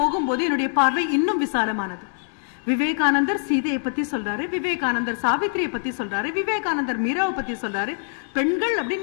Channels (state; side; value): silent; right; digital silence